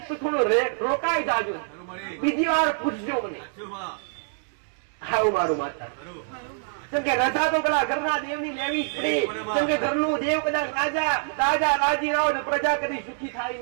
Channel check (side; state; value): left; silent; digital silence